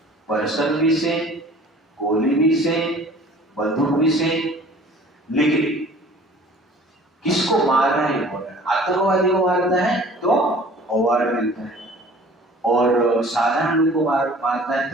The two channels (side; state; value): both; normal; correlation 0.49